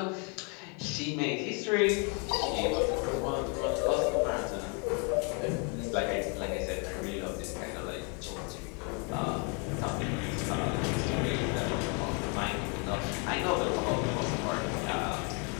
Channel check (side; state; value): right; quieter; 35.8 dB